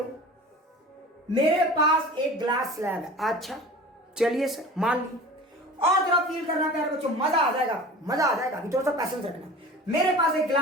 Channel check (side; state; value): both; normal; correlation 0.39